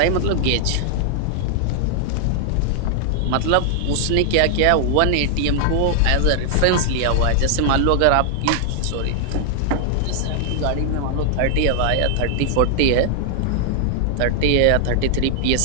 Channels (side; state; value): both; different; correlation 0.00